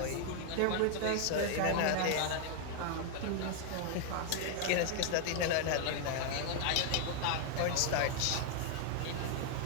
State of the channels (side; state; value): both; different; correlation 0.00